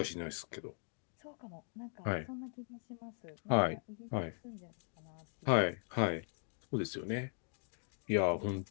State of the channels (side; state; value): right; silent; 51 dB below the other